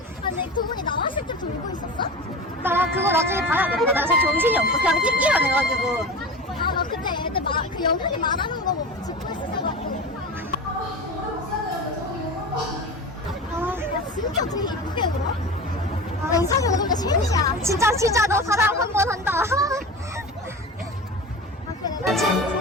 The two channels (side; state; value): both; normal; correlation 0.30